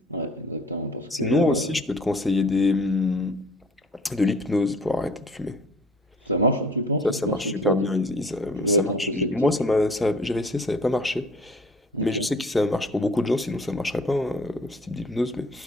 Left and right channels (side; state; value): both; normal; correlation 0.51